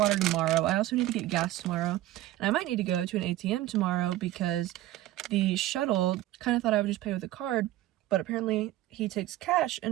tomorrow. I also need to get gas tomorrow. And I might need to go to an ATM tomorrow because the shuttle kind of thought I would just pay with a card, but apparently he takes cash.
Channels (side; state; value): left; quieter; 15.4 dB